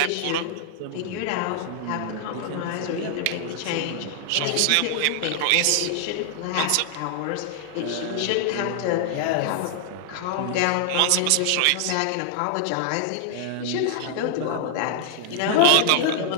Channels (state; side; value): different; both; correlation -0.01